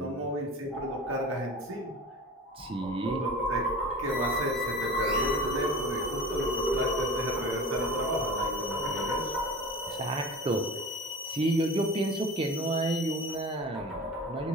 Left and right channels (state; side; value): normal; both; correlation 0.36